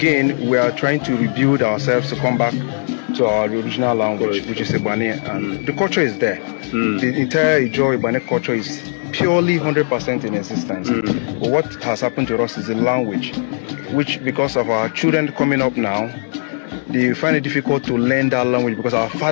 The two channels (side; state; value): right; silent; digital silence